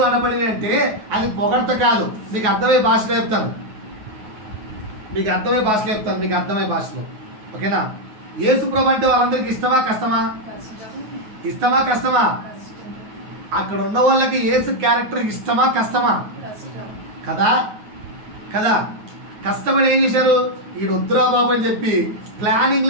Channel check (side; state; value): left; late; 9.4 ms